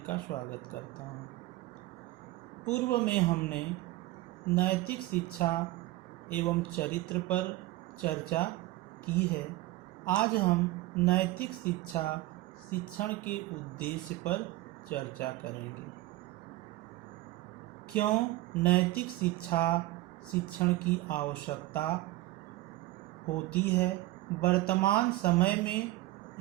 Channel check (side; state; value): left; quieter; 17.7 dB